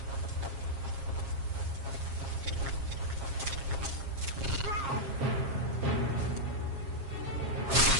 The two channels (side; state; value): left; late; 7.4 ms